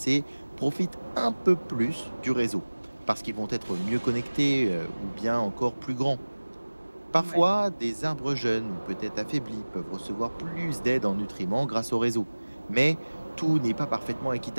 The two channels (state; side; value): inverted; both; correlation -1.00